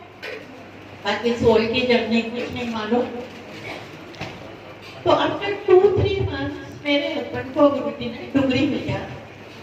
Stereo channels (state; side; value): identical; both; correlation 1.00